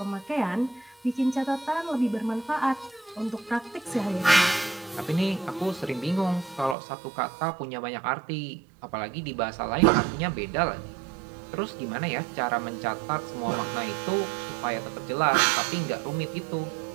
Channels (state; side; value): drops out; left; at 6.8 s